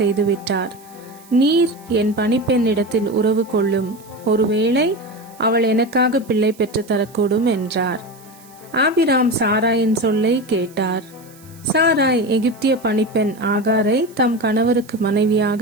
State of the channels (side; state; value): right; noise; hiss, 25 dB below the sound